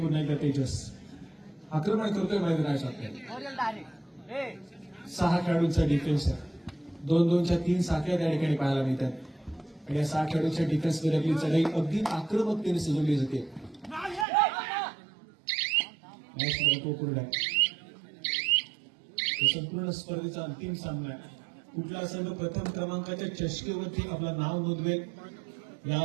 एकदा तेजस आक्रमण करतोय मैदानाच्या. 6 खेळाडूंचा डिफेन्स आहे. 2-2च्या 3 साखळ्या त्या ठिकाणी पाहायला मिळतात. आणि या 6 खेळाडूंच्या डिफेन्समध्ये आपली चढाई अगदी आक्रमकतेने सजवली जाते. संपूर्ण स्पर्धेचा अंतिम सामना आहे. कुठला संघ प्रथम क्रमांकाच्या चषकेवरती आपलं नाव नोंदवेल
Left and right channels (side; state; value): left; drops out; at 14.2 s